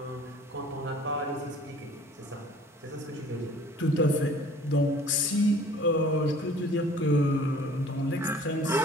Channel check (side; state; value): both; normal; correlation 0.51